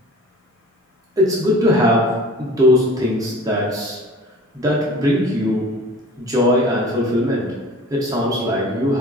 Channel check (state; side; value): normal; both; correlation 0.43